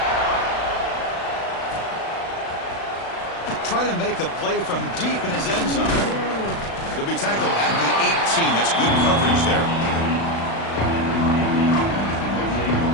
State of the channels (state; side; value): late; right; 36 ms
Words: Try to make a play from deep in his end zone. He'll be tackled at the 18. That's good coverage there.